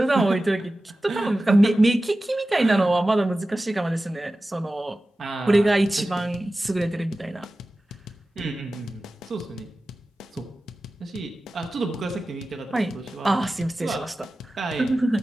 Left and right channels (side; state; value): both; normal; correlation 0.95